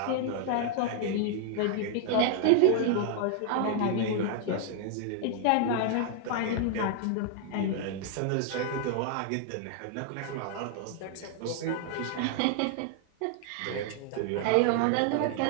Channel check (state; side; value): different; both; correlation 0.00